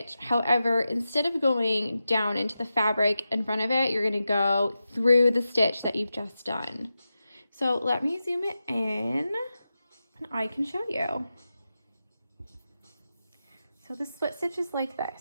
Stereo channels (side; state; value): both; inverted; correlation -0.91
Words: However, instead of going down into the fabric in front of it, you're going to go through the stitch that you've just done. So let me zoom it in and I can show you. So the split stitch is like